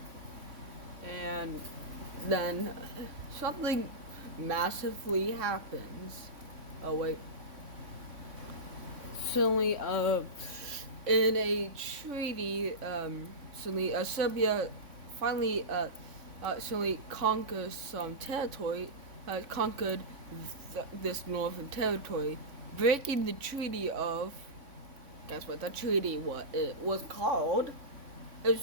and then something massively happens. Oh wait. Suddenly, in a treaty, suddenly Serbia finally, suddenly conquers some territory, conquered this northern territory, breaking the treaty of. Guess what? The treaty what it was called? It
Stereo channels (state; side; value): late; left; 3.6 ms